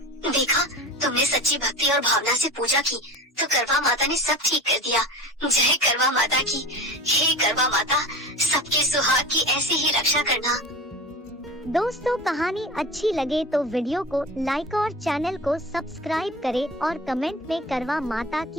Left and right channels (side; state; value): both; normal; correlation 0.33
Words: देखा, तुमने सच्ची भक्ति और भावना से पूजा की तो करवा माता ने सब ठीक कर दिया। जय करवा माता की। हे करवा माता, सबके सुहाग की ऐसी ही रक्षा करना। दोस्तों, कहानी अच्छी लगे तो वीडियो को लाइक और चैनल को सब्सक्राइब करें और कमेंट में करवा माता